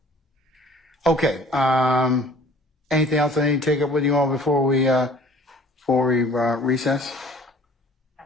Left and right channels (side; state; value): both; normal; correlation 0.50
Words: Okay. Anything else I need to take up with you all before we recess?